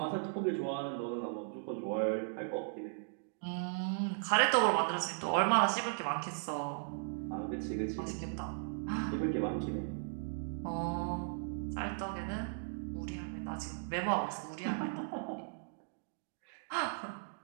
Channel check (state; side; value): silent; left; digital silence